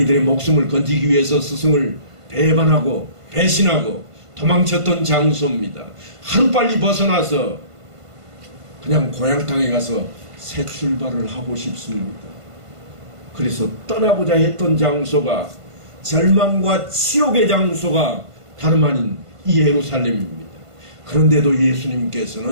목숨을 건지기 위해서 스승을 배반하고 배신하고 도망쳤던 장소입니다. 하루빨리 벗어나서 그냥 고향 땅에 가서 새 출발을 하고 싶습니다. 그래서 떠나고자 했던 장소가 절망과 치욕의 장소가 다름 아닌 이 예루살렘입니다. 그런데도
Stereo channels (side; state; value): left; late; 1.5 ms